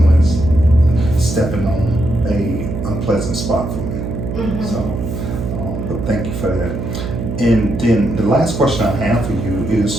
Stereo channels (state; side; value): noise; right; hum, 5 dB below the sound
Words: stepping on a unpleasant spot for me. Mm-hmm. So, but thank you for that. And then the last question I have for you